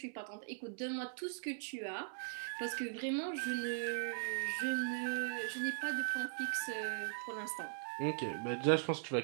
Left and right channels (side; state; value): left; silent; 51 dB below the other